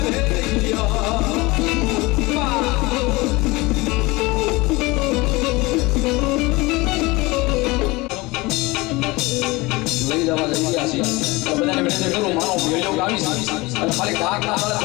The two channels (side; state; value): right; quieter; 22.6 dB